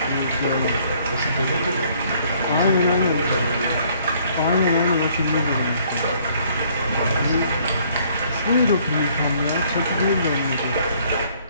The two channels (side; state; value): both; inverted; correlation -0.63